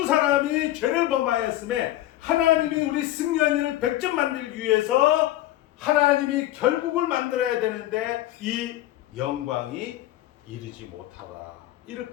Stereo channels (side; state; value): right; quieter; 15.0 dB